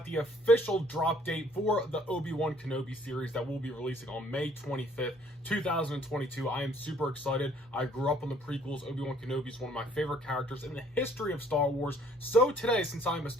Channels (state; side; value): normal; both; correlation 0.60